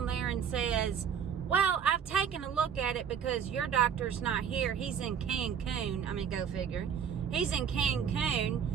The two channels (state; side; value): quieter; left; 7.8 dB